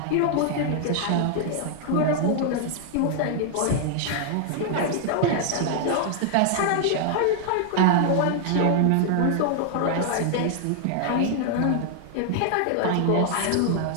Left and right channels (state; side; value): different; both; correlation 0.00